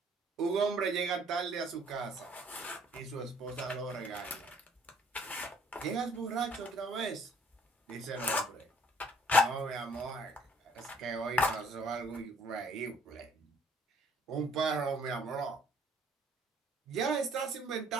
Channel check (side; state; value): both; normal; correlation 0.60